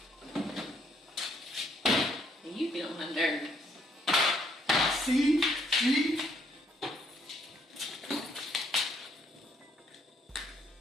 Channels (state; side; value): normal; both; correlation 0.69